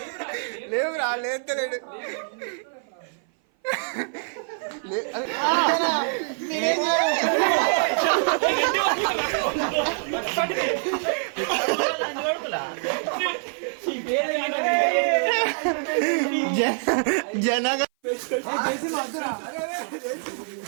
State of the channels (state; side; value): silent; left; 57 dB below the other